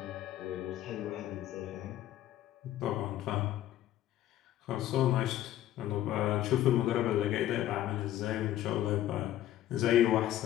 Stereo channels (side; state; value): right; quieter; 13.0 dB